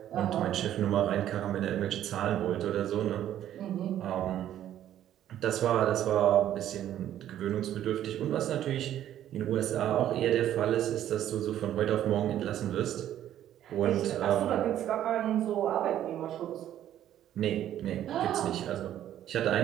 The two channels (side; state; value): left; quieter; 11.6 dB